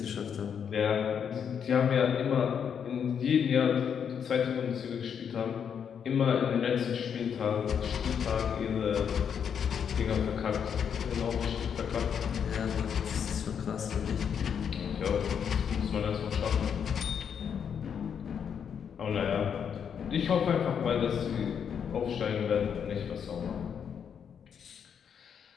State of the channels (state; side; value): quieter; right; 7.6 dB